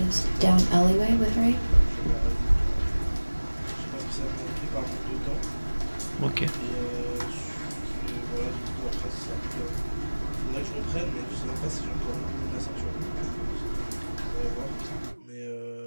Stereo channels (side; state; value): both; inverted; correlation -1.00